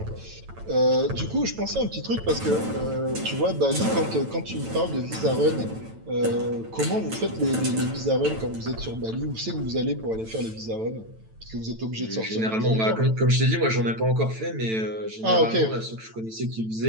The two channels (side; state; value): left; late; 9.0 ms